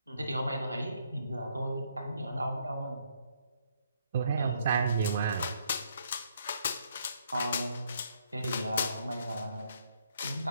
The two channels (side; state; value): both; inverted; correlation -0.71